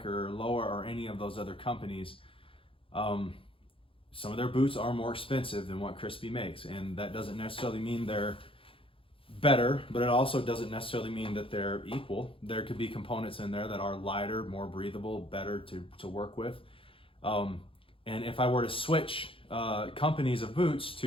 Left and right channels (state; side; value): late; right; 0.26 ms